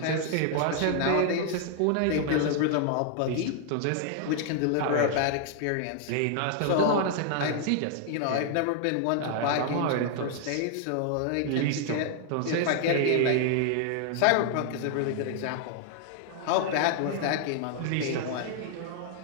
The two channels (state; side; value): different; both; correlation 0.00